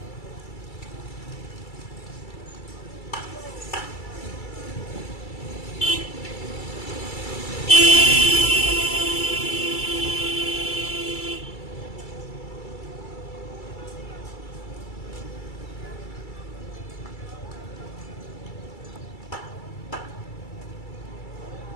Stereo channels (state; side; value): late; right; 2.3 ms